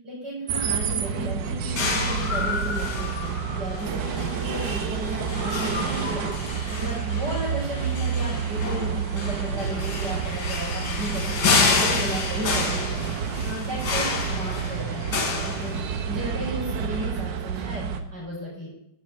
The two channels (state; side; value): late; left; 5.0 ms